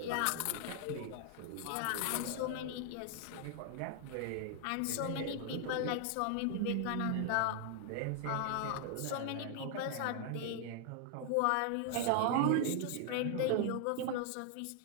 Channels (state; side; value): different; both; correlation 0.00